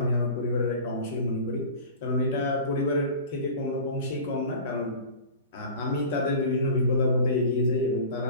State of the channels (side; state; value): both; inverted; correlation -0.37